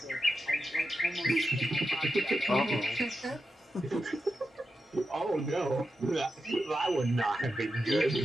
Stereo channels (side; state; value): both; normal; correlation 0.88